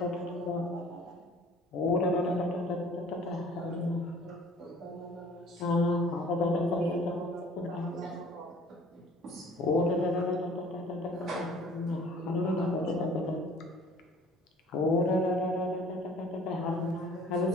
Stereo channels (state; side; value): normal; both; correlation 0.51